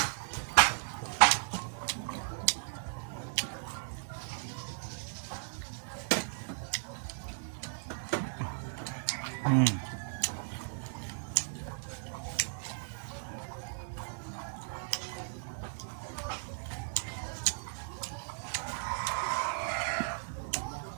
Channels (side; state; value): left; silent; digital silence